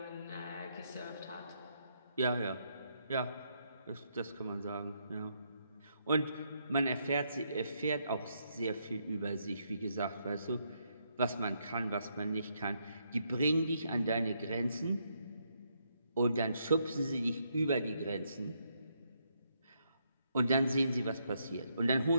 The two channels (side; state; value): both; inverted; correlation -0.76